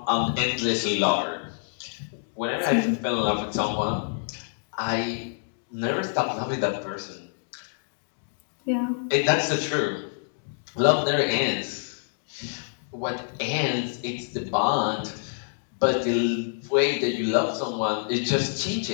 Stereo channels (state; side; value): silent; right; digital silence